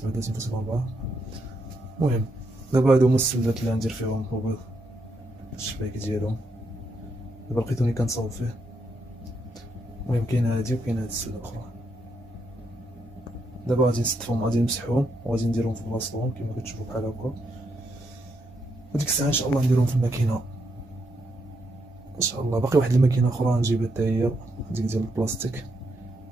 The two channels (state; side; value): normal; both; correlation 0.79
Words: المهم دابا هادو هما السلات اللي غندير فيهم البيض، الشبايك ديالهم. دابا لقيتوني كنصاوب فيه. المهم كاينه هادي وكاينه هاد السله الاخرى. دابا غادي نستفهم، غادي نمسحهم وغادي نديرهم في بلاصتهم كما كتشوفوا بحال هكا. وديك الساعه ان شاء الله نديرهم في الماكينه ان شاء الله. باقي واحد الماكينه اخرى نجيبها حتى هي، ديك ديال البلاستيك.